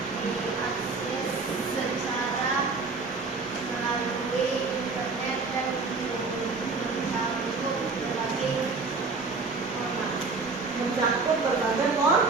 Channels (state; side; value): quieter; left; 4.1 dB